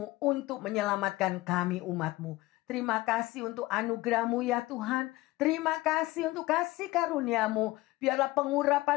untuk menyelamatkan kami umat-Mu. Terima kasih untuk anugerah-Mu ya Tuhan. Terima kasih untuk kasih karunia-Mu. Biarlah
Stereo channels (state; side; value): quieter; right; 19.1 dB